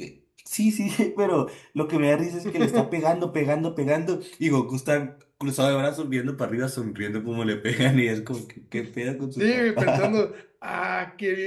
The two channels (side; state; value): both; identical; correlation 1.00